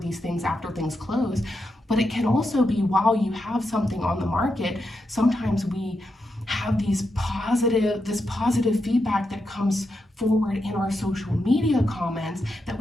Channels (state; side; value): normal; both; correlation 0.85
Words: things after things close, but it can also be while you have something on the market. Sometimes we have this positive feedback that comes forward in our social media comments that